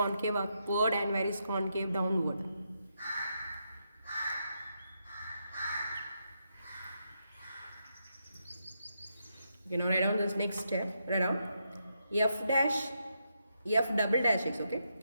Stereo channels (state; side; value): inverted; both; correlation -0.82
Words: upward and where is concave downward? You know, write down this next step. Write down f double dash x. Okay,